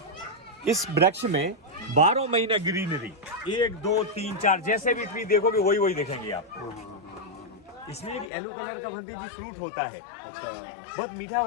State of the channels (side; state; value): right; drops out; at 8.3 s